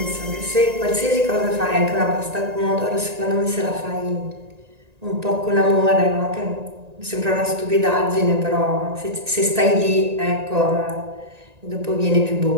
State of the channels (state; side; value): late; left; 1.9 ms